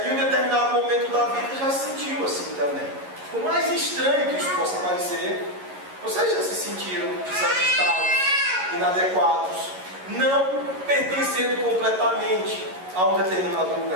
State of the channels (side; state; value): left; late; 11 ms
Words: em um determinado momento da vida, já se sentiu assim também. Por mais estranho que isso possa parecer, vocês já se sentiram desajustados, inadequados, não pertencendo completamente a um determinado